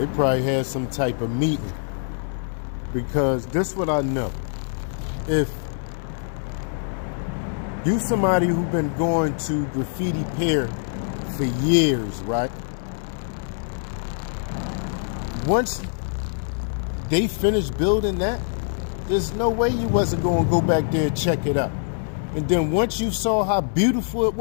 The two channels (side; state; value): right; silent; digital silence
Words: probably had some type of meeting. Because this what I know. If you somebody who been going to Graffiti Pier for years, right? Once they finished building that, there's no way you wasn't going to go back there and check it out. And then once you saw how beautiful it